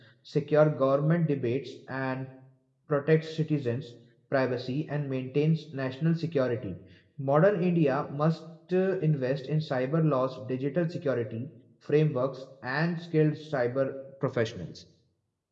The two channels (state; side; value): identical; both; correlation 1.00